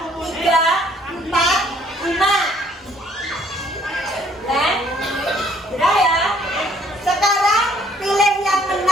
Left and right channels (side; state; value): both; normal; correlation 0.62